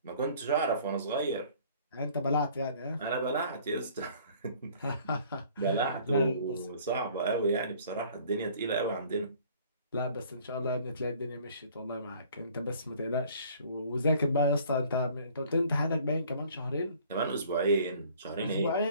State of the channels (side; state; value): both; inverted; correlation -0.54